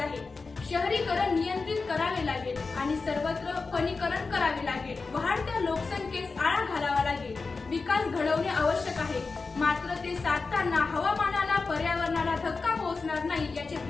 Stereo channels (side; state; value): right; quieter; 4.2 dB